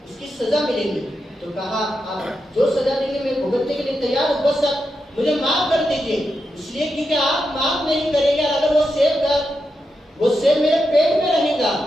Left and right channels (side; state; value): both; normal; correlation 0.86